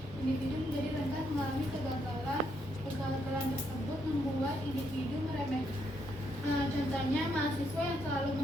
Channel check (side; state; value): both; normal; correlation 0.76